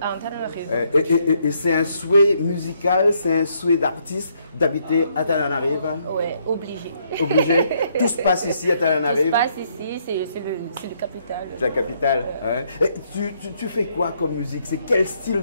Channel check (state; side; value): inverted; both; correlation -0.72